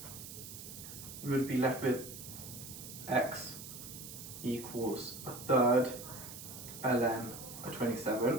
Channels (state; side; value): noise; right; hiss, 11 dB below the sound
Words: We would be left with x equals a third ln a